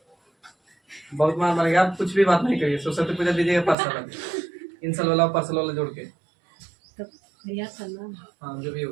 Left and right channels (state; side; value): drops out; left; at 3.8 s